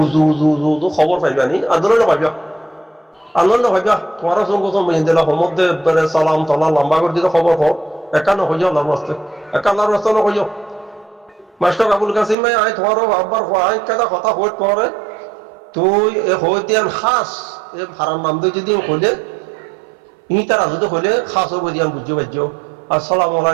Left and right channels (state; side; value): drops out; left; at 12.4 s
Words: উজু খবর পাইবানি আন্দোলন পাইবা তোমার সঙ্গে দিলা সমুদ্রে সালাম তলা লম্বা করে দিলে খবর হোক একান্ন হয়ে যাও রাস্তে একান্নার রাস্তা হয়ে যাও মাস্টার আবুল কাসিম ভাই আয় তোমার আব্বার কেদা কথা হইত পরে তুই হয়ে দিয়ান খাস ভাড়ার নাম দিয়ে যদি হইলে তারা যদি হইলে খাস হবো দিয়ান বুঝতে পারছো আসসালামু